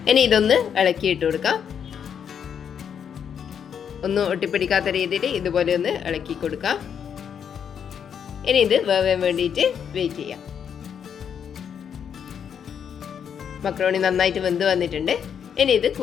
ഇനി ഇതൊന്ന് ഇളക്കി ഇട്ട് കൊടുക്കാം. ഒന്നും ഒട്ടിപ്പിടിക്കാത്ത രീതിയിൽ ഇതുപോലെ ഒന്ന് ഇളക്കി കൊടുക്കാം. ഇനി ഇത് വേവാൻ വേണ്ടിയിട്ട് വെയിറ്റ് ചെയ്യാം. മക്രോണി നന്നായിട്ട് വെന്ത് വന്നിട്ടുണ്ട്. ഇനി ഇത്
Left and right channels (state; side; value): quieter; right; 7.9 dB